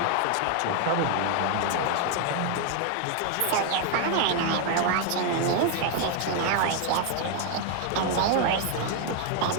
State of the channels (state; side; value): different; both; correlation 0.01